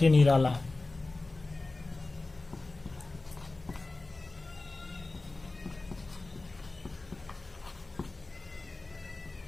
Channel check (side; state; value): right; quieter; 3.3 dB